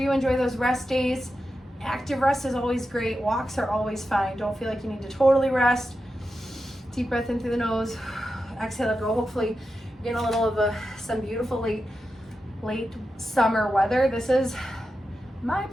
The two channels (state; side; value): normal; both; correlation 0.90